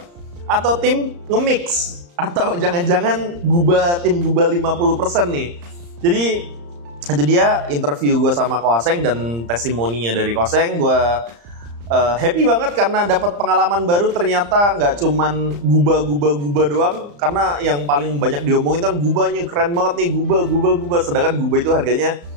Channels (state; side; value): late; left; 35 ms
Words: atau tim nge-mix? Atau jangan-jangan tim gubah 50% nih? Jadi itu dia interview gue sama Koseng dan testimoninya dari Koseng. Gue happy banget karena dapat pengalaman baru. Ternyata nggak cuman gubah doang. Karena yang paling banyak diomongin kan gubahnya keren banget nih, gubah. Sedangkan gubah itu harganya